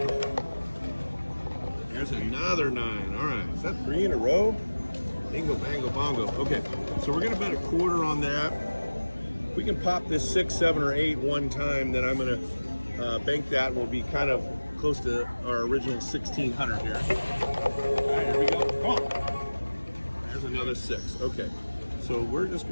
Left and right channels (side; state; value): both; inverted; correlation -1.00